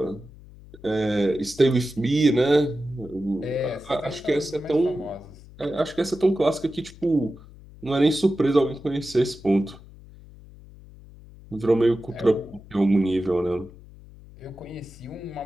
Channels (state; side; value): noise; left; hum, 20 dB below the sound